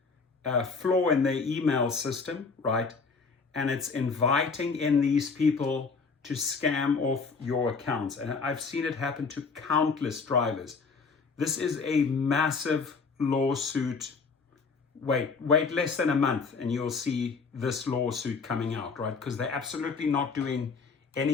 flaw in their email system, right? And it's inviting in these people to scam off your accounts. And I've seen it happen to countless drivers. This is a massive lawsuit. Wait less than a month and you'll see this lawsuit coming out, right? Because they're absolutely not doing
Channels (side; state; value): right; quieter; 4.8 dB